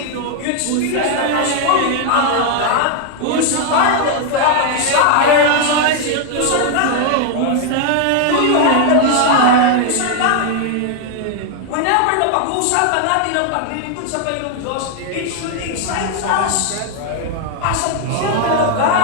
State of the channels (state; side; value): different; both; correlation 0.00